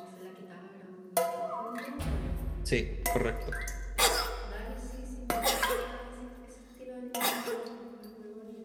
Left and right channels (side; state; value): both; identical; correlation 1.00